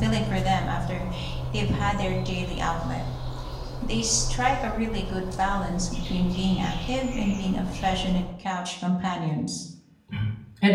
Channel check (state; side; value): identical; both; correlation 1.00